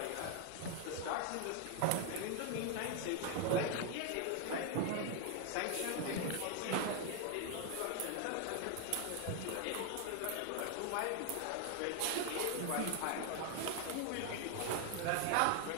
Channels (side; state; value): both; different; correlation 0.00